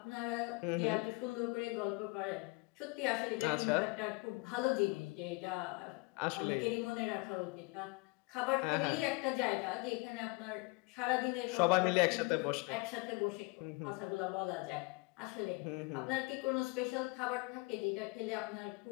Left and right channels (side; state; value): right; quieter; 27.7 dB